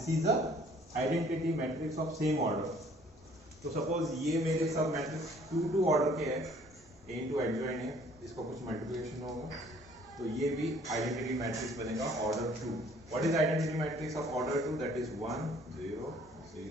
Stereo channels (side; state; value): both; normal; correlation 0.57